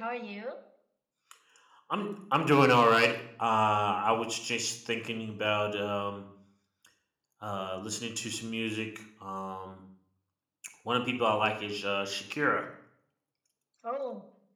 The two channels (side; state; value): both; identical; correlation 1.00